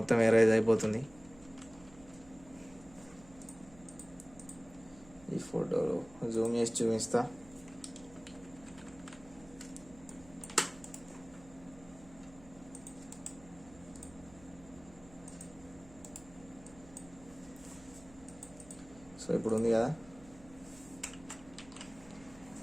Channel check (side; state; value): right; noise; hum, 21 dB below the sound